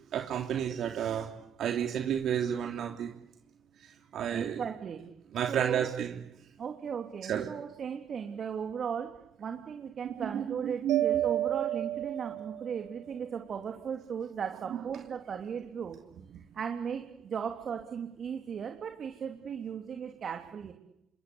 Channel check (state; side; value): quieter; left; 8.7 dB